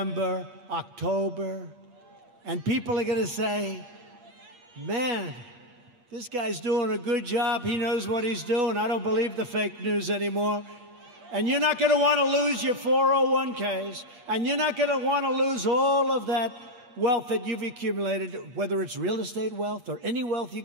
October, and people are going to say, man, this guy's doing a good job. He knows what he's doing. I don't believe the fake news anymore. And you're not going to want to lose your 401ks, and you're not going to want to lose all of that wealth that you've accumulated, whether it's real estate wealth or any wealth you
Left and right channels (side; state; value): left; late; 8.3 ms